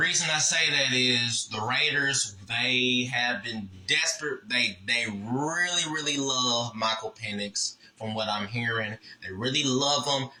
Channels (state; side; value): identical; both; correlation 1.00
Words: I say that is the Raiders, they have been desperate. They really, really love Michael Penix from what I'm hearing. They really love him.